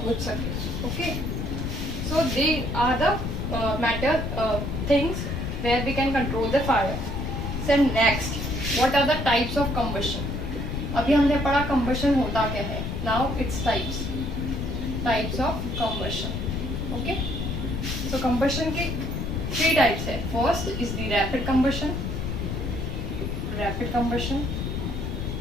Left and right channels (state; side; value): noise; left; rumble, 3 dB below the sound